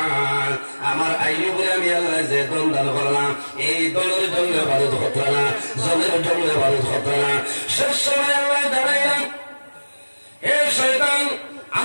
আমার আইয়ুবরে আমি আল্লাহ যে দন দান করলাম এই দলের জন্য বারুদ হতো না জলের জন্য বারুদ হতো না শেষ সময় আল্লাহ দাঁড়াইলাম হে শয়তান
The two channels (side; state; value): both; inverted; correlation -1.00